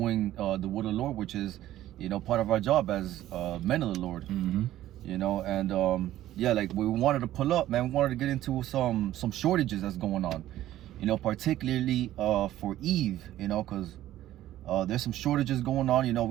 the word of the Lord, which is, you know, part of our job as men of the Lord. You know, and yeah, like we wanted to pull up, man, we wanted to get into some shortages that's going on, you know, particularly for Eve, you know, because there's some shortages going on. You know,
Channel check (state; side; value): quieter; left; 13.7 dB